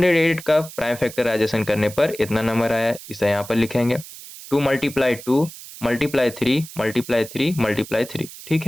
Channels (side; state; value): right; noise; hiss, 15 dB below the sound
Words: का प्राइम फैक्टराइजेशन करने पर इतना नंबर आया है, इसे यहाँ पर लिखेंगे 2 मल्टीप्लाई 2 मल्टीप्लाई 3 मल्टीप्लाई 3 मल्टीप्लाई 3। ठीक